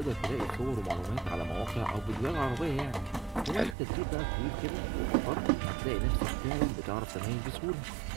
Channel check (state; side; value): drops out; left; at 3.8 s